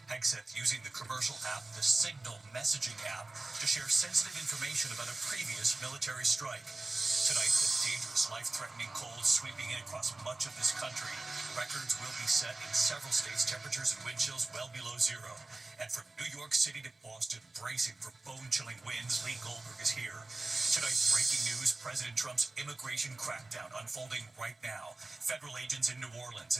Hegseth using the commercial app, the Signal messaging app, to share sensitive information about a previous military strike. Tonight, the dangerous, life-threatening cold sweeping in across much of this country. Records will be set in several states, temperatures and wind chills well below zero. And from New York City to Boston, bracing for bone-chilling winds, Lee Goldberg is here. Tonight, breaking news, President Trump's immigration crackdown unfolding right now. Federal agents in New Orleans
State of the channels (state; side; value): quieter; left; 3.2 dB